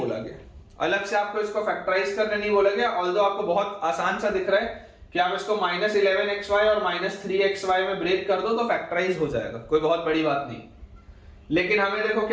गया, अलग से आपको इसको फैक्टराइज करने नहीं बोला गया। ऑल्दो आपको बहुत आसान सा दिख रहा है कि आप इसको माइनस 11xy और माइनस 3xy में ब्रेक कर दो तो फैक्टराइज हो जाएगा, कोई बहुत बड़ी बात नहीं। लेकिन हमें देखो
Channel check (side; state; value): both; identical; correlation 1.00